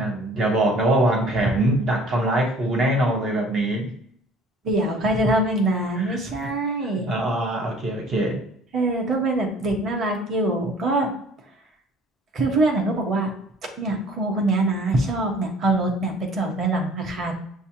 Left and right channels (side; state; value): both; normal; correlation 0.51